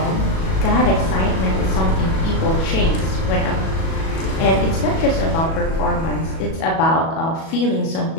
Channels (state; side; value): late; right; 37 ms